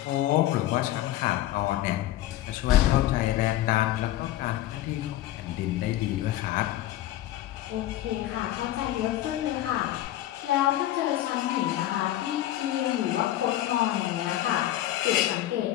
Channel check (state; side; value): quieter; right; 14.1 dB